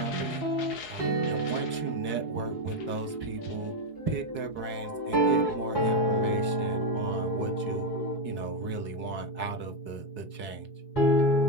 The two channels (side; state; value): right; late; 4.7 ms